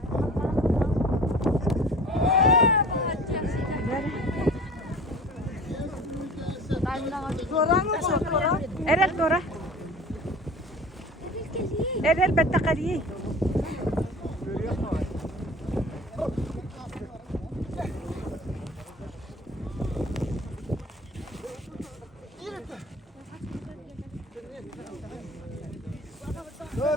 Evet Dora. Evet elbette kaliye.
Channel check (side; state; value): both; normal; correlation 0.41